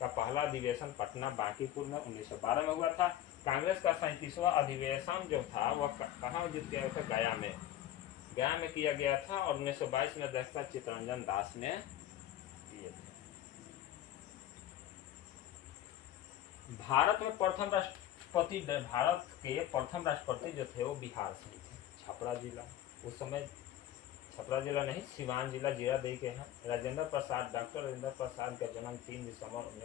पहला अधिवेशन पटना बांकीपुर में 1912 में हुआ था। कांग्रेस का 37वां अधिवेशन जो था वह कहाँ आयोजित किया था? गया में किया गया था और 1922 में अध्यक्षता चित्तरंजन दास ने किए थे। भारत के प्रथम राष्ट्रपति जो थे वो बिहार से ही थे। छपरा जिला, उस समय छपरा जिला नहीं सिवान जिला जीरादेई के हैं। डॉक्टर राजेंद्र प्रसाद का जन्म 3 दिसंबर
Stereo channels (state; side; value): quieter; right; 12.4 dB